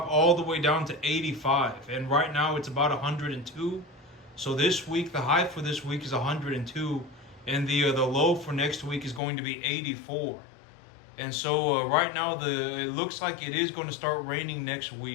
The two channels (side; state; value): right; drops out; at 9.2 s